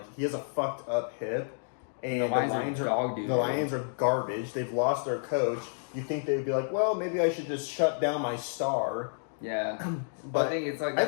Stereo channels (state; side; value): silent; right; digital silence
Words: he has a fucked up hip, and The Lions are dog doo. The Lions are garbage. They've lost their coach. You think they would be like, well, maybe I should just shut down my star. Yeah, But I think it's like I